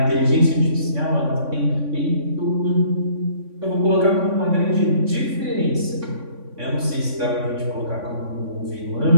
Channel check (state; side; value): late; left; 3.6 ms